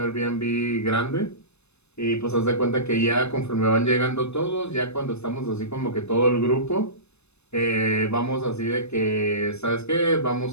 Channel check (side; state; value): right; late; 0.81 ms